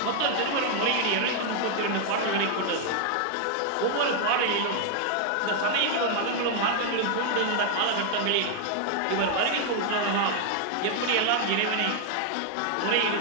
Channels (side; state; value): both; different; correlation 0.00